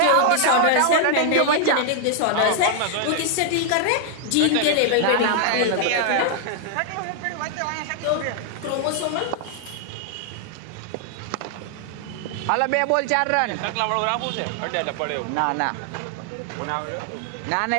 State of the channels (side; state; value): both; different; correlation 0.00